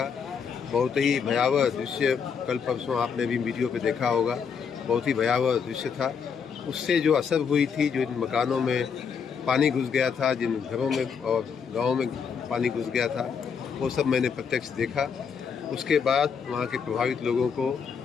बहुत ही भयावह दृश्य, कल परसों आपने भी वीडियो पे देखा होगा, बहुत ही भयावह दृश्य था। उससे जो असर हुई थी, जो इन मकानों में पानी घुस गया था, जिन घरों में और गाँव में पानी घुस गया था, वो सब मैंने प्रत्यक्ष देखा। उसके बाद वहाँ के प्रभावित लोगों को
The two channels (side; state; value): right; quieter; 6.5 dB